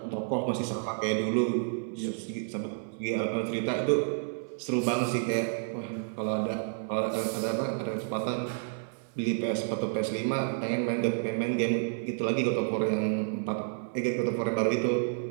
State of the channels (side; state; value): left; silent; 58 dB below the other